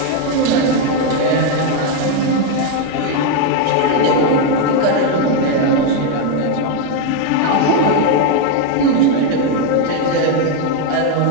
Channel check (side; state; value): both; different; correlation 0.01